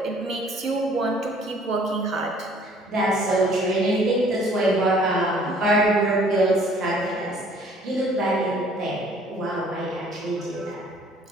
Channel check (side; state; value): both; normal; correlation 0.57